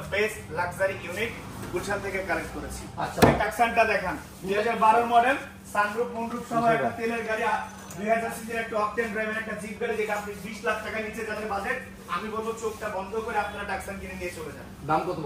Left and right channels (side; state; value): both; identical; correlation 1.00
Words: best luxury unit Gulshan থেকে কালেক্ট করেছি। আচ্ছা এই টাকসানটা দেখেন 2012 মডেল সানরুফ মুনরুফ সহ একটা তেলের গাড়ি 2000 সিসির একটা অকটেন ড্রাইভের একটা জিপ গাড়ি যেটা আপনি 20 লাখ টাকা নিচে যাদের বাজেট আমি বলবো চোখটা বন্ধ করে আপনারা টাকসান কিনে নিয়ে চলে যান। দাম কত